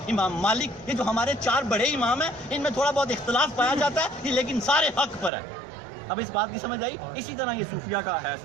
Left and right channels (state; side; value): drops out; left; at 5.3 s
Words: امام مالک، یہ جو ہمارے 4 بڑے امام ہیں ان میں تھوڑا بہت اختلاف پایا جاتا ہے، لیکن سارے حق پر ہے. اب اس بات کی سمجھ آئی؟ اسی طرح یہ صوفیہ کا ہے